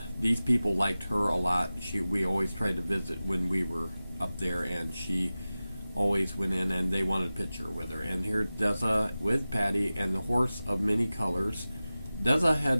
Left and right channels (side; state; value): both; inverted; correlation -0.96